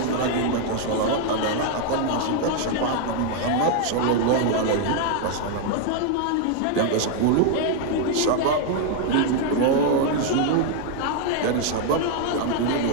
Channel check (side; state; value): both; different; correlation 0.00